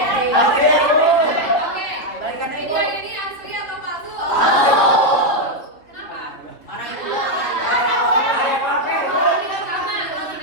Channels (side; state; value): right; late; 3.1 ms